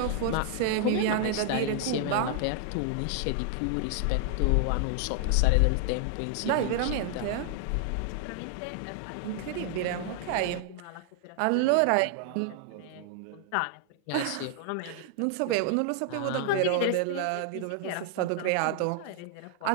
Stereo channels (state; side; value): different; both; correlation 0.00